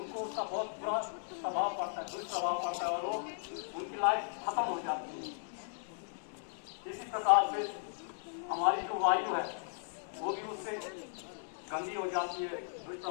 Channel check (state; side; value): silent; right; digital silence